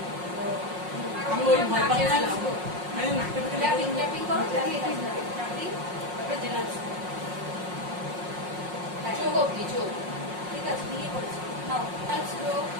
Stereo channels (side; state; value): left; late; 5.5 ms